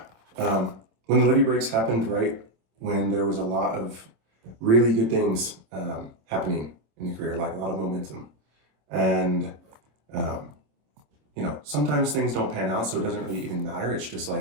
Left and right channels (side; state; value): left; late; 26 ms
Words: When the Levee Breaks happened right when there was a lot of really good things happening in the career, like a lot of momentum. And, sometimes things don't pan out, so it doesn't really even matter. It's just